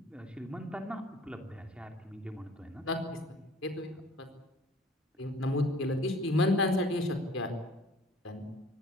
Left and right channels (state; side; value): normal; both; correlation 0.51